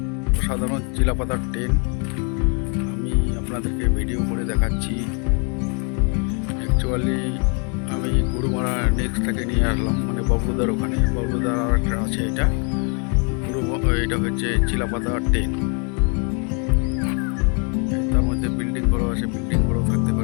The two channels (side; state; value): right; quieter; 37.4 dB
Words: অসাধারণ চিলাপাতার টেন্ট। আমি আপনাদেরকে ভিডিও করে দেখাচ্ছি। অ্যাকচুয়ালি আমি গুরুমারা নেক্সটটাকে নিয়ে আসলাম, মানে বাবলুদার ওখানে। বাবলুদার আর একটা আছে, এটা হচ্ছে চিলাপাতার টেন্ট। তার মধ্যে বিল্ডিং বড় আছে, বিল্ডিং বড় থাকতে